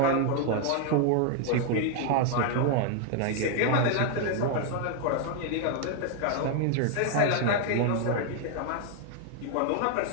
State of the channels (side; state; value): both; different; correlation 0.00